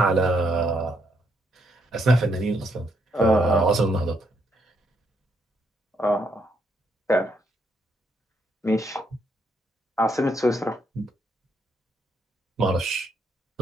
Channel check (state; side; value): normal; both; correlation 0.75